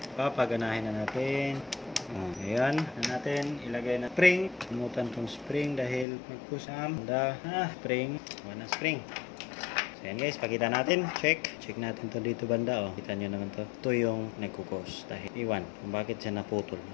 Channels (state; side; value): drops out; right; at 6.1 s